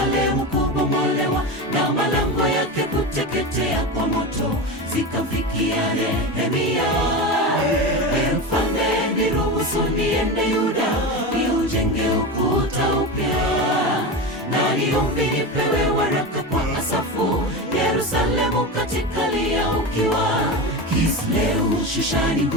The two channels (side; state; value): both; normal; correlation 0.22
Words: kubomolewa na malango yake kuteketea kwa moto zikamfikia Nehemia. Mfalme, niruhusu niende Yuda niujenge ukuta upya, na niombi nipewe waraka kwa Asafu, Yerusalemu katika lia ukiwa. Kisleu Shushani